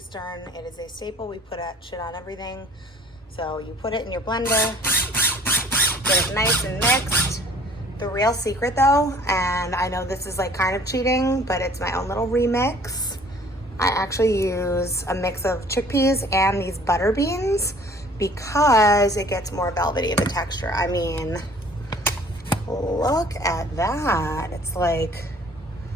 it is a staple. We put shit on everything. So you put it in your blender, get it nice and mixed. The real secret though, and I know this is like kind of cheating, but it's my own little remix. I actually use a mix of chickpeas and these butter beans because it gets more velvety of a texture. I mean, look at that. It's like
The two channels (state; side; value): normal; both; correlation 0.52